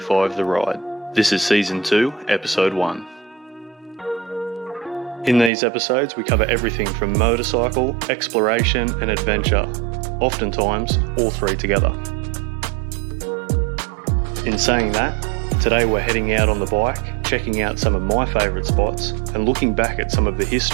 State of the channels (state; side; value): drops out; left; at 5.5 s